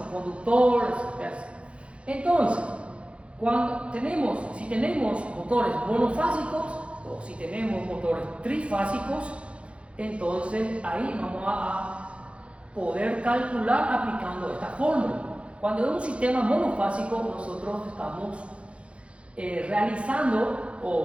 conductores, etc. Entonces, si tenemos motores monofásicos o si tenemos motores trifásicos, entonces ahí vamos a poder calcular aplicando esta fórmula. Cuando es un sistema monofásico, nosotros estamos realizando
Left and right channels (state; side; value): late; left; 0.060 ms